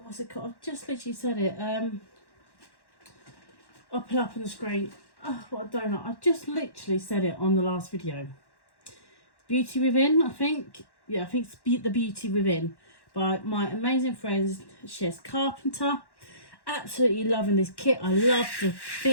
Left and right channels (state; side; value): late; right; 1.1 ms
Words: what's it called? I've just literally said it. I'll put it up on the screen. Oh, what a donut. I just literally said it on the last video. Beauty Within, I think. Yeah, I think it's The Beauty Within by my amazing friend Cheryl Carpenter. Absolutely loving this kit. I love the